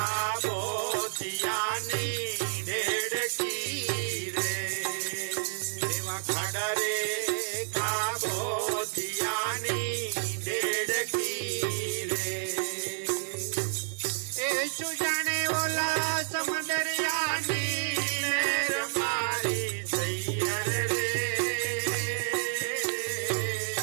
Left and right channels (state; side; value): silent; left; digital silence